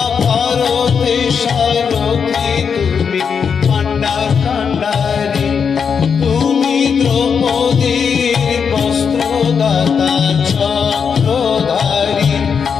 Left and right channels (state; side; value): quieter; right; 6.5 dB